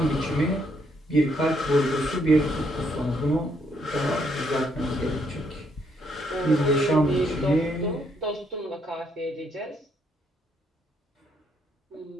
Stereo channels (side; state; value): both; normal; correlation 0.72